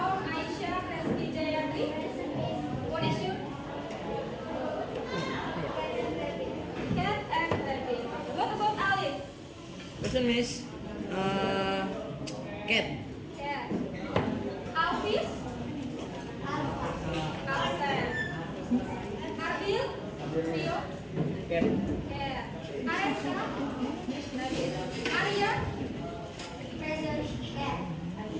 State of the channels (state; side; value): identical; both; correlation 1.00